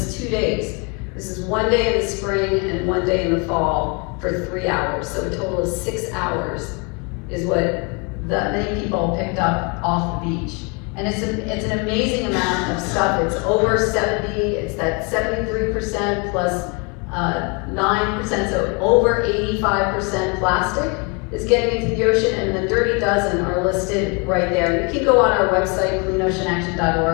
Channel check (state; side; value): quieter; right; 32.4 dB